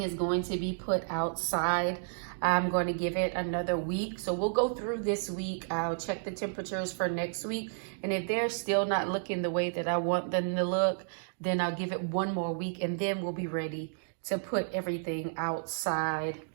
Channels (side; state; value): left; silent; digital silence